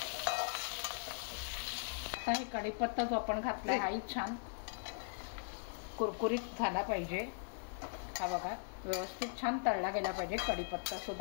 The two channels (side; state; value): right; silent; digital silence